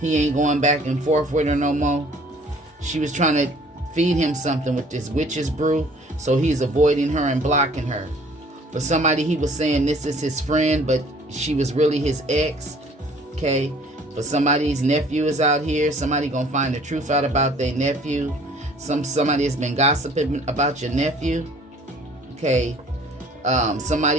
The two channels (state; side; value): normal; both; correlation 0.54